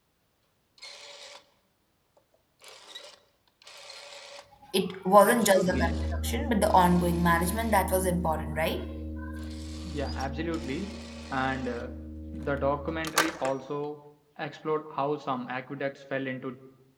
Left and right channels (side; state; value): both; identical; correlation 1.00